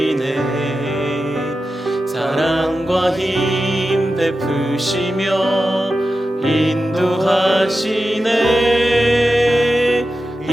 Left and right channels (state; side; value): normal; both; correlation 0.92